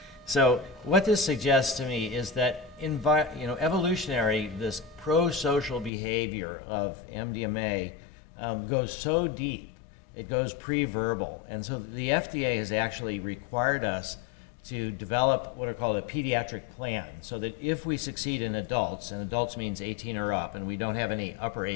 so what this suggests to me is that evolutionary, this pro-social behavior of MDMA goes so deep, it goes pre-verbal. And so the FDA has actually required us to develop what are called a pediatric plan, so that if we succeed in adults, and adults means 18 or up, and we don't have any upper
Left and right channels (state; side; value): drops out; right; at 5.9 s